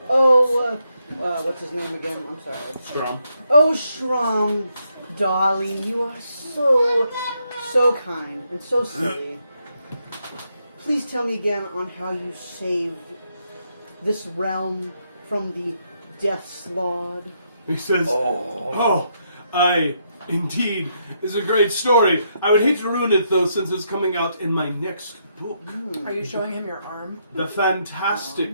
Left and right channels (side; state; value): both; inverted; correlation -0.78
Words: Oh, what's his name again? I'm sorry. Strom. Oh, Shrom, darling, you are so kind and so silly. Please tell me again on how you saved this realm from the Death's Lord. He says, indeed, it's a great story. I would hate to ruin it, though, since it's coming out in my next book. Are you showing him your arm? The